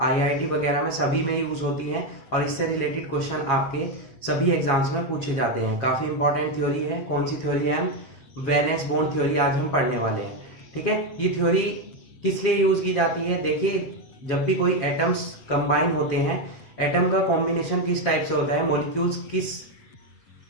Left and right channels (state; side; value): late; right; 7.4 ms